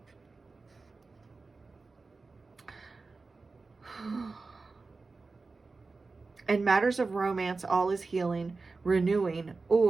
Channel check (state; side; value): quieter; left; 3.9 dB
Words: In matters of romance, all is healing, renewing,